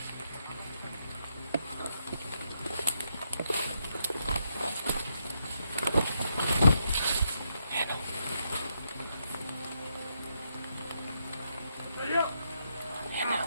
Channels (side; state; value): both; inverted; correlation -0.80